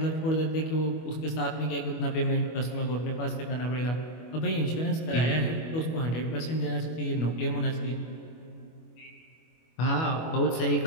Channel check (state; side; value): late; right; 25 ms